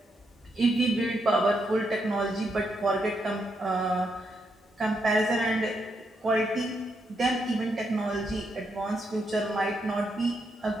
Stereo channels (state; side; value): normal; both; correlation 0.80